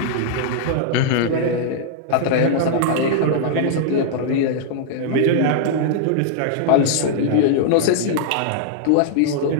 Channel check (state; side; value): different; both; correlation -0.01